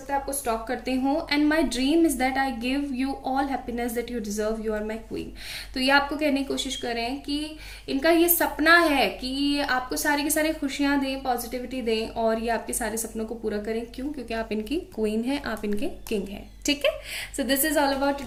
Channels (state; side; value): identical; both; correlation 1.00